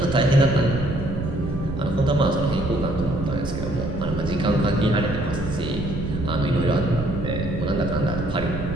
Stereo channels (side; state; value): right; noise; rumble, 8 dB below the sound